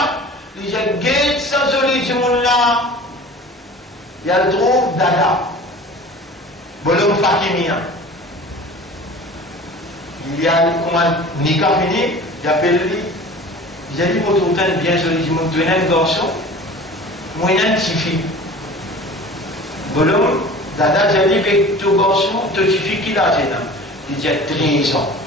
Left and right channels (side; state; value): both; normal; correlation 0.41